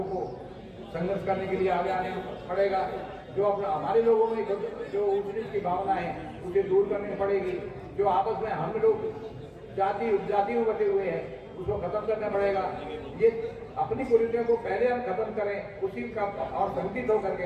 को संघर्ष करने के लिए आगे आने पड़ेगा। जो अपना हमारे लोगों में जो ऊंच की भावना है उसे दूर करनी पड़ेगी। जो आपस में हम लोग जाति में बटे हुए हैं उसको खत्म करना पड़ेगा। ये अपनी कुरीतियों को पहले हम खत्म करें, उसी का और संगठित होकर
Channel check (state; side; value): identical; both; correlation 1.00